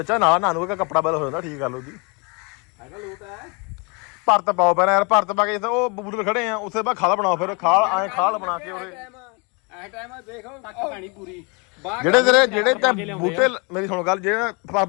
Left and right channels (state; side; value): quieter; right; 31.6 dB